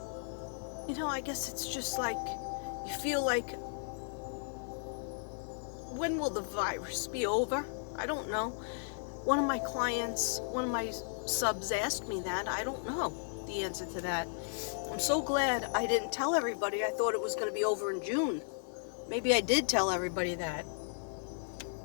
you know, I guess it's just like, you feel like, when will the virus be over? I don't know. One of my clients, one of my subs asked me that. I don't know the answer to that. I'm so glad I didn't tell everybody. I thought it was going to be over in June. Maybe I did tell everybody that.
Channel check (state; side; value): silent; right; digital silence